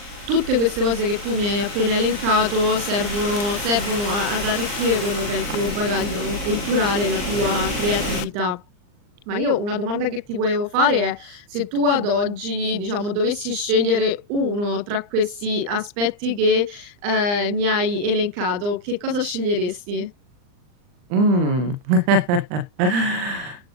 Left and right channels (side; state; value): left; late; 39 ms